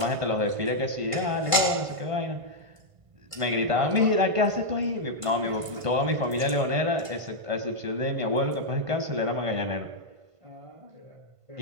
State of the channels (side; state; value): left; late; 1.5 ms